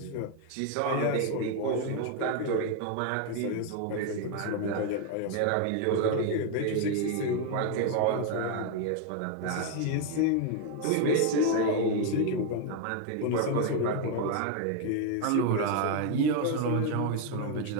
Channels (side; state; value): both; different; correlation 0.01